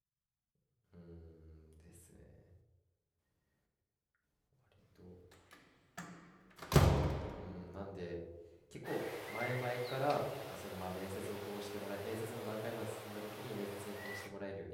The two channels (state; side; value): identical; both; correlation 1.00